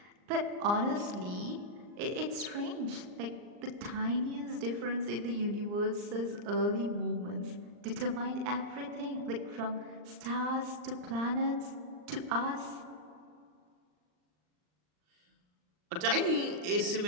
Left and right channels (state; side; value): late; left; 39 ms